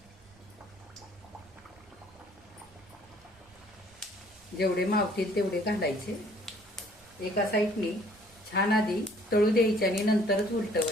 जेवढे मावतील तेवढे घालायचे. एका साईडने छान आधी तळू द्यायचे आणि नंतरच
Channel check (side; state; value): right; noise; rumble, 29 dB below the sound